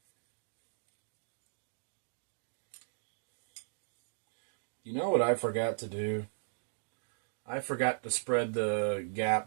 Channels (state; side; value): silent; left; digital silence